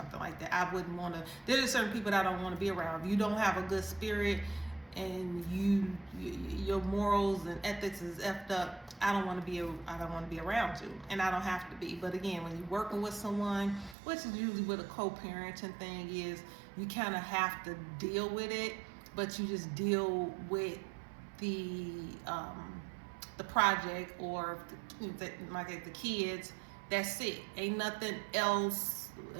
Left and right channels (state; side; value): drops out; left; at 14.0 s